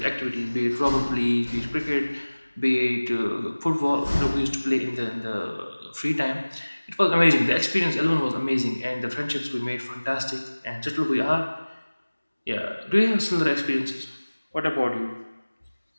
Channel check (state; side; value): inverted; both; correlation -1.00